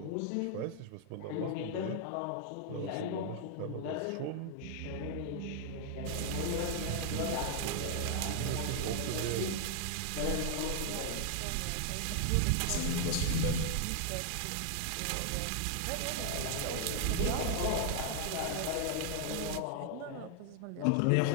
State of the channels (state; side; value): different; both; correlation 0.00